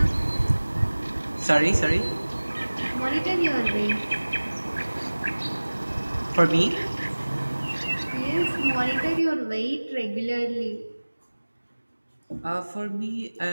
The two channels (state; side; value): inverted; both; correlation -1.00